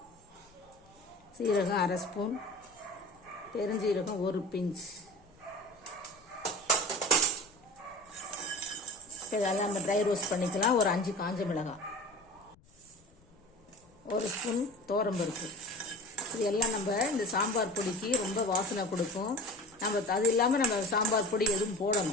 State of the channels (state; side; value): noise; left; rumble, 29 dB below the sound